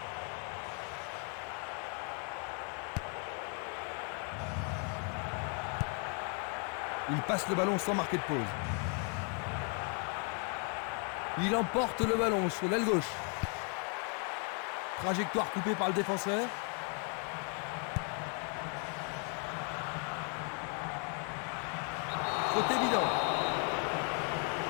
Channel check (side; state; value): right; quieter; 40.0 dB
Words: Il passe le ballon sans marquer de pause. Il emporte le ballon sur l'aile gauche. Trajectoire coupée par le défenseur. Faute évident.